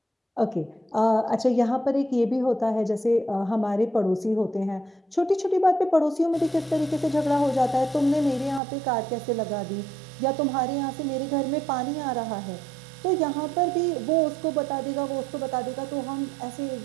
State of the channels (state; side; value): drops out; left; at 8.6 s